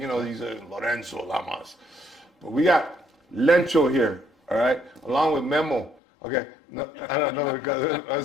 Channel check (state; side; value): drops out; right; at 6.0 s